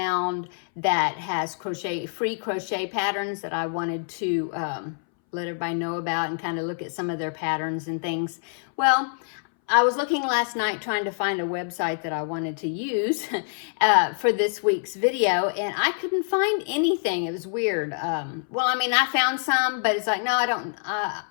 that has free crochet patterns that I wanted to let everybody know about and kind of look at some of their patterns and things. Well, I was looking last night trying to find a website that I wanted to use for this week's video, and I couldn't find anything. It was weird. Well, I mean, I found some, but it's like, no,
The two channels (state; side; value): silent; right; 61 dB below the other